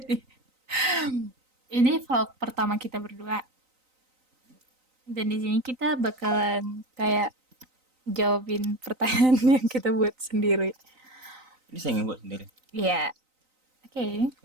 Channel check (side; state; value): left; late; 3.9 ms